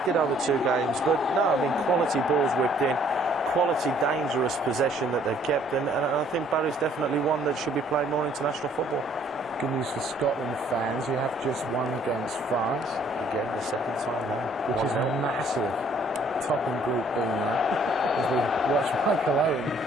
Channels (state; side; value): normal; both; correlation 0.61